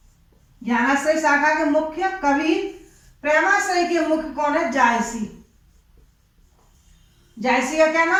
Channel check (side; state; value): both; identical; correlation 1.00